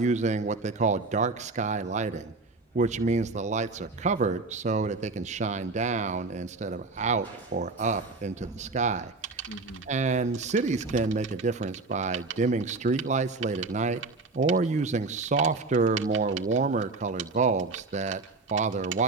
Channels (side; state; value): left; quieter; 3.6 dB